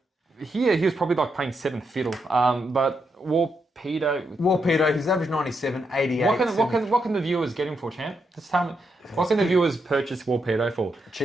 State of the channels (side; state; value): both; normal; correlation 0.82